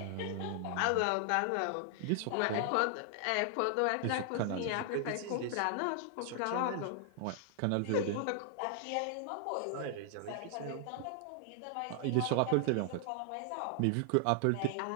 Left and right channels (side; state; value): both; different; correlation 0.00